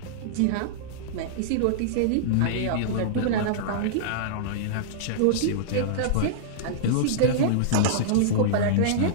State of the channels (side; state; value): both; different; correlation -0.02